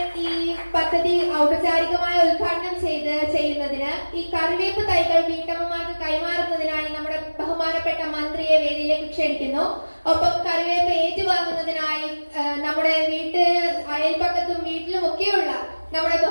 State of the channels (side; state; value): both; inverted; correlation -1.00